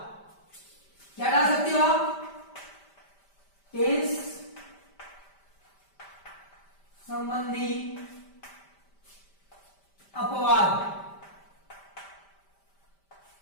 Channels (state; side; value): late; right; 5.1 ms